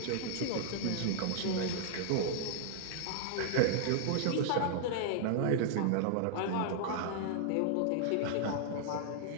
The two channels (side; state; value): both; different; correlation -0.01